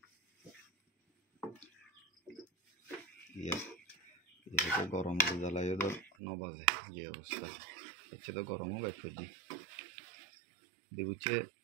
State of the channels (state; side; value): drops out; left; at 6.1 s